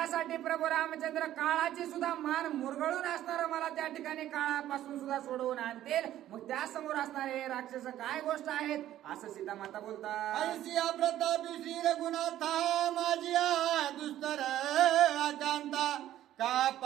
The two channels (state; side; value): quieter; left; 12.8 dB